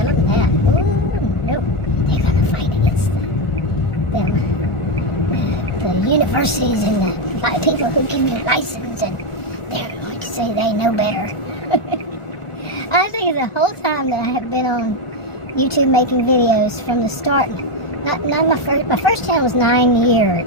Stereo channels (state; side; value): late; right; 1.4 ms